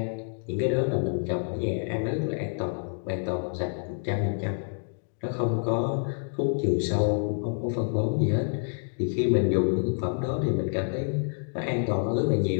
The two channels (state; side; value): silent; right; 60 dB below the other